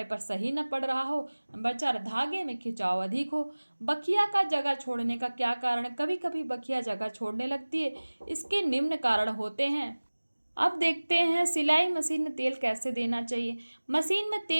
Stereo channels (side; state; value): both; inverted; correlation -1.00